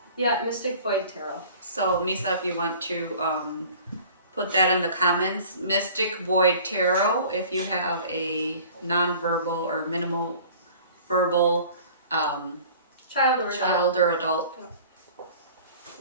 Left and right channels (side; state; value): both; inverted; correlation -0.47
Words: Mystic Void Tarot. So Misa, if you want to put that in the comments, Mystic Void Tarot. If you have a non-verbal or minimal verbal child or adult,